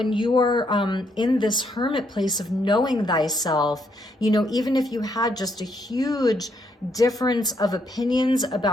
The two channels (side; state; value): both; normal; correlation 0.74